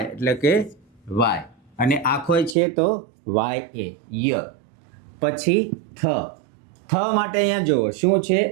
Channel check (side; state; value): left; drops out; at 2.6 s